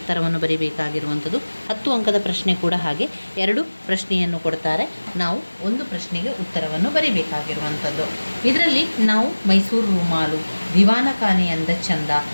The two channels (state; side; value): inverted; both; correlation -1.00